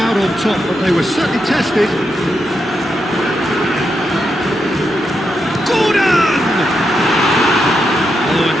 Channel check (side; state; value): both; normal; correlation 0.84